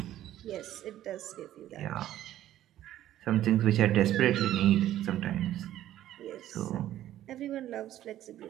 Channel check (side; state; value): left; quieter; 12.9 dB